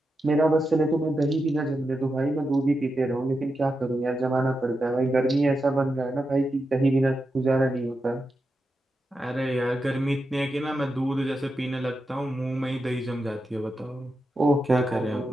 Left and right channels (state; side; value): normal; both; correlation 0.88